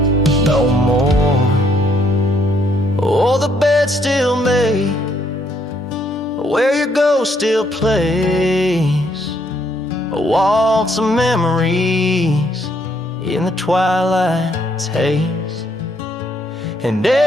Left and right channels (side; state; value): both; normal; correlation 0.70